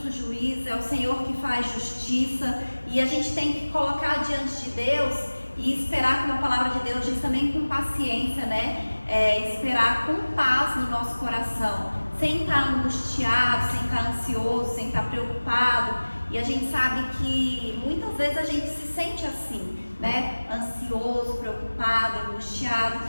juiz, é o Senhor que faz justiça, e a gente tem que colocar diante de Deus e esperar, como a palavra de Deus diz, também com paciência, né? Esperar com paz no nosso coração, sem estar angustiado, sem estar ansioso, sem estar preocupado. E a gente sabe que muitas vezes a gente se sente assim, né? Ansioso, preocupado, angustiado.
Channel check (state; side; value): inverted; both; correlation -1.00